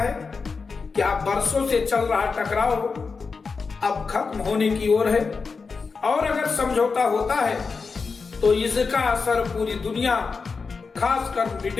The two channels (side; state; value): right; quieter; 4.8 dB